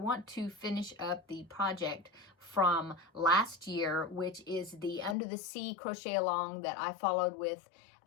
to finish up the project from last year, which is the Under the Sea crochet along that I followed with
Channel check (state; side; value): drops out; right; at 5.2 s